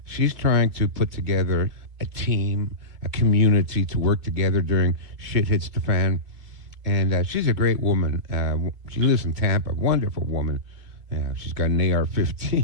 she's trying to put together a team, a community to work together during shit hits the fan. And she's a great woman. She lives in Tampa, wonderful woman. Yeah, she's got an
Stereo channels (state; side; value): late; left; 2.4 ms